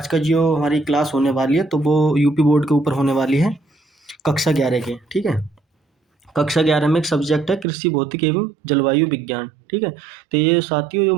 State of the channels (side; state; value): left; drops out; at 7.7 s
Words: का जो हमारी क्लास होने वाली है तो वो यूपी बोर्ड के ऊपर होने वाली है, कक्षा 11 के। ठीक है, कक्षा 11 में एक सब्जेक्ट है कृषि भौतिक एवं जलवायु विज्ञान। ठीक है, तो ये साथियों जो